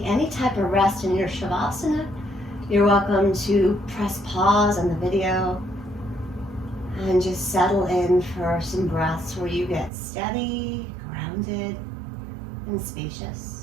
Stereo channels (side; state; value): left; drops out; at 9.9 s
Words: any type of rest in your Shavasana. You're welcome to press pause on the video and just settle in for some breaths where you get steady, grounded, and